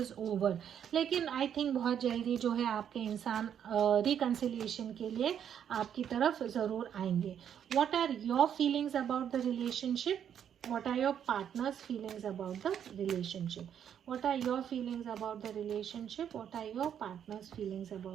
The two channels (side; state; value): left; quieter; 9.0 dB